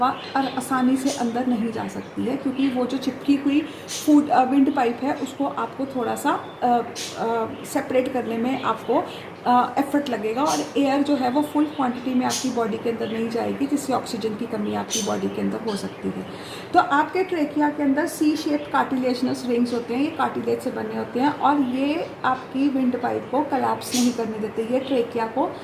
आसानी से अंदर नहीं जा सकती है, क्योंकि वो जो चिपकी हुई विंड पाइप है उसको आपको थोड़ा सा सेपरेट करने में आपको एफर्ट लगेगा, और एयर जो है वो फुल क्वांटिटी में आपकी बॉडी के अंदर नहीं जाएगी, जिससे ऑक्सीजन की कमी आपकी बॉडी के अंदर हो सकती है। तो आपके ट्रेकिया के अंदर सी शेप कार्टिलेजनस रिंग्स होते हैं, ये कार्टिलेज से बने होते हैं, और ये आपकी विंड पाइप को कोलैप्स नहीं करने देते, ये ट्रेकिया को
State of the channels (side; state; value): both; identical; correlation 1.00